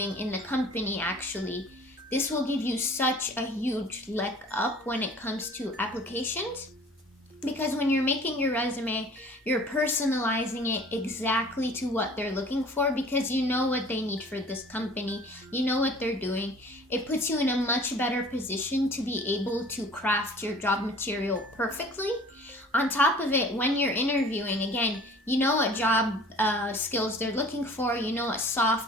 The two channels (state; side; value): normal; both; correlation 0.48